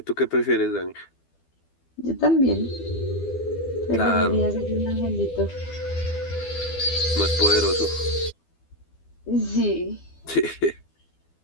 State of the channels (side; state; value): right; late; 12 ms